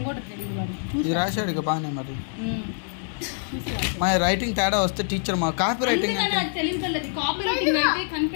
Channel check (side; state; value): right; silent; digital silence